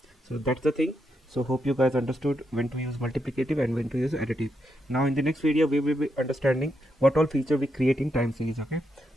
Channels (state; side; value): normal; both; correlation 0.82